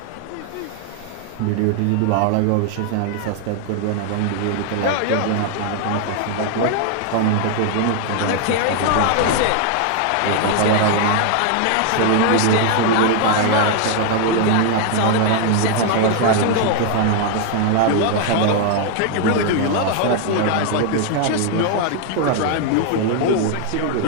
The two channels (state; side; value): different; both; correlation 0.00